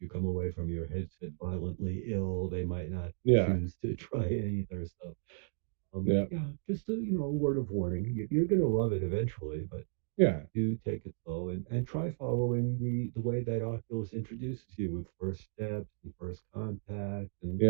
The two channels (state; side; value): silent; left; digital silence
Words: you come away from your headset violently ill. They might not Yeah, choose to try it either. So, yeah, yeah, just a word of warning. You're going to love it eventually, but yeah, do take it slow and try following the way that Oculus introduces you with first steps and first contact. And,